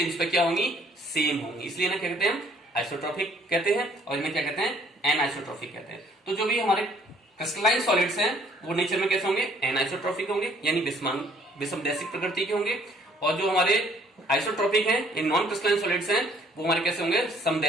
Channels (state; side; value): normal; both; correlation 0.60